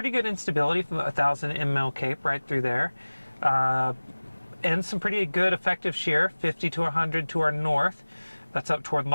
good instability from 1,000 ml cape right through there. And some pretty good effective shear, 50 to 100 to our north. That's up toward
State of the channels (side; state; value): both; inverted; correlation -1.00